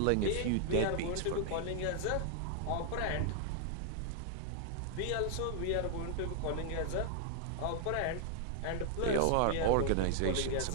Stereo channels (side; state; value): both; different; correlation -0.01